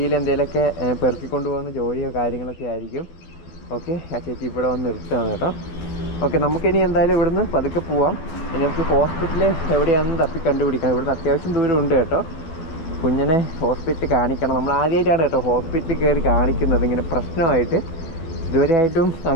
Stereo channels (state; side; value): late; right; 12 ms